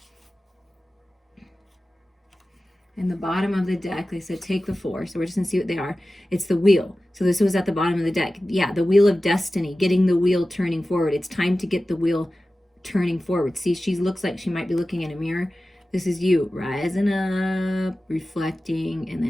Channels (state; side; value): normal; both; correlation 0.95